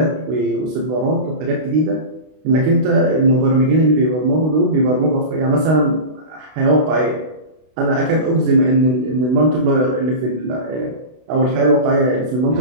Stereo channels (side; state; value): left; late; 32 ms